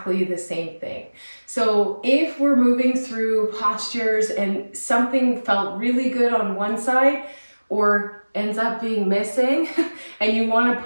the same thing. So if we're moving through postures and something felt really good on one side or ends up being missing and you want to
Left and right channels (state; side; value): inverted; both; correlation -1.00